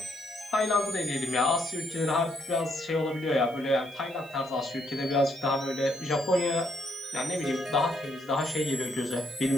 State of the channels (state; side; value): noise; left; hiss, 27 dB below the sound